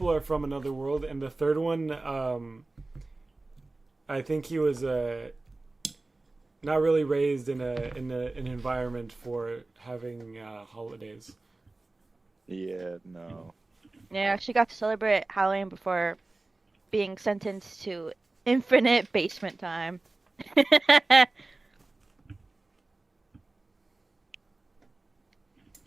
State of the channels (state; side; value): quieter; left; 3.2 dB